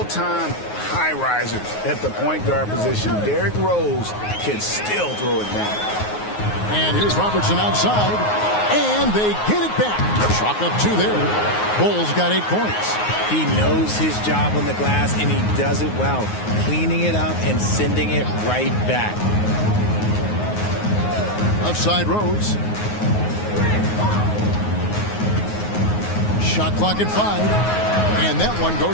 high risers at the point guard position, Derrick Rose, can still throw it down. And here's Robertson outside, and they get it back. Chalk up 2 there. Bulls got 8 points. He knows his job on the glass, and he does it well, cleaning it up and sending it right back. Outside Rose. Shot clock at 5. And that one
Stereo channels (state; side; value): late; right; 9.5 ms